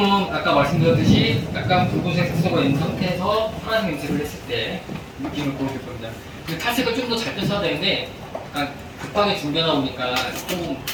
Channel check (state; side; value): identical; both; correlation 1.00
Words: 아까 말씀드렸듯이 약간 붉은색 색소가 있는 상태에서 파란색 염색을 했을 때 느낌을 보여줄 겁니다. 그 탈색을 좀 더 잘 뺐어야 되는데 약간 급하게 준비하다 보니까 조금